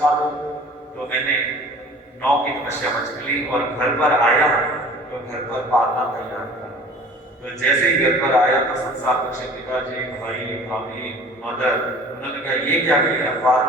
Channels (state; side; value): normal; both; correlation 0.46